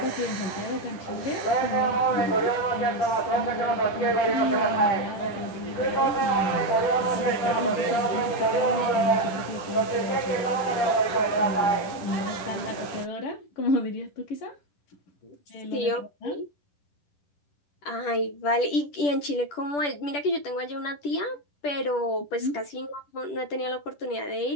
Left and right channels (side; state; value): right; late; 10 ms